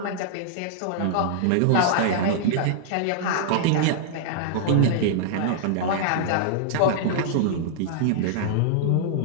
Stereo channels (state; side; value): different; both; correlation -0.01